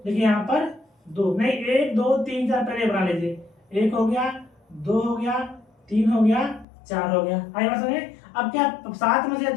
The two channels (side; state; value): right; drops out; at 6.7 s